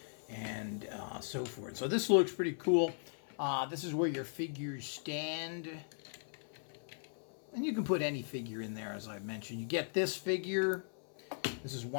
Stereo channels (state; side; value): silent; right; 52 dB below the other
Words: and so forth. So this looks pretty cool. This is where your figures stand. And you can put any figure in there, as I mentioned. You get this figure. This is